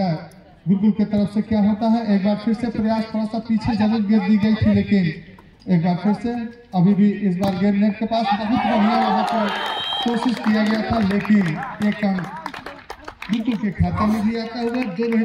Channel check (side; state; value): both; identical; correlation 1.00